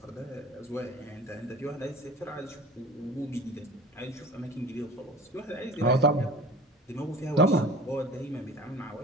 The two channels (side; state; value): both; normal; correlation 0.41